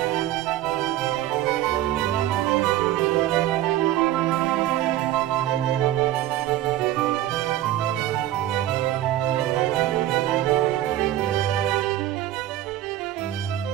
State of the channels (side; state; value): left; quieter; 13.6 dB